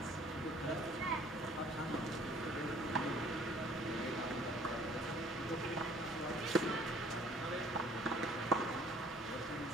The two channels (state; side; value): normal; both; correlation 0.55